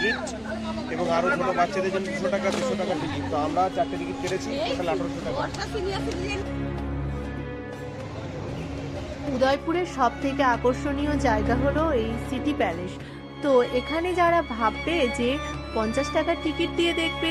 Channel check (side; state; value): both; identical; correlation 1.00